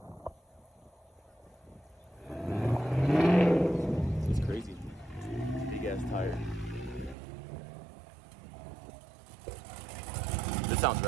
It's crazy. Big ass tire. This sounds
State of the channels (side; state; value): left; drops out; at 7.2 s